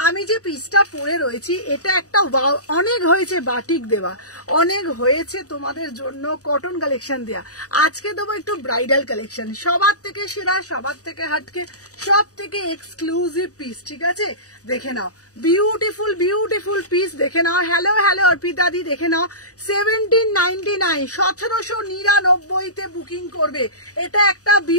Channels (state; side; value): late; right; 0.66 ms